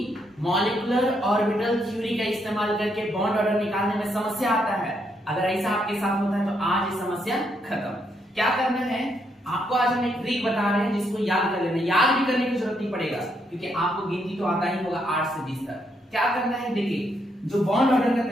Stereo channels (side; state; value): both; normal; correlation 0.76